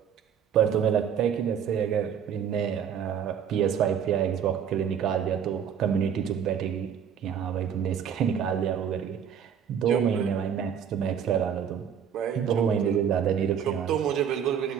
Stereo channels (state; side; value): quieter; left; 8.2 dB